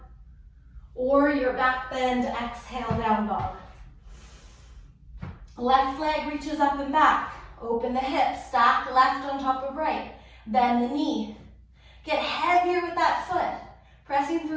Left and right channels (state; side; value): identical; both; correlation 1.00